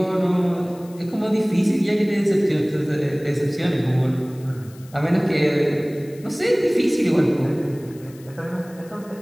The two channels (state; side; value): noise; left; hiss, 25 dB below the sound